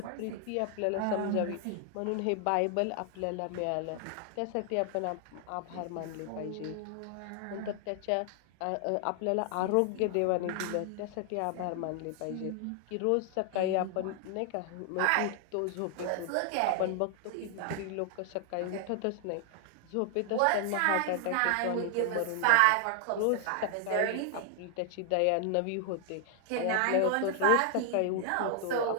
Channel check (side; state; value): both; different; correlation 0.00